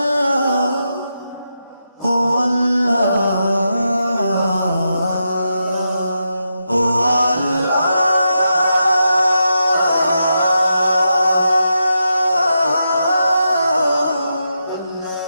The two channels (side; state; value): both; inverted; correlation -0.86